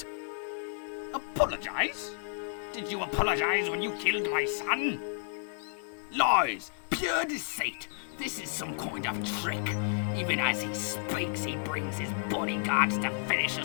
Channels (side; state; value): right; silent; digital silence